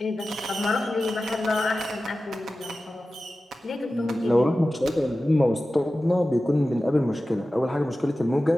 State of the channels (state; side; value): normal; both; correlation 0.95